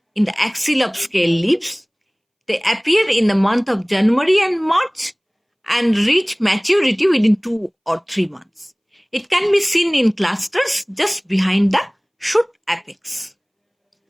in the axil of scale leaves. They appear in the month of January and March and reach maturity within 2 or 3 months. It can be seen in clusters just behind the shoot apex.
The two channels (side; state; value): both; identical; correlation 1.00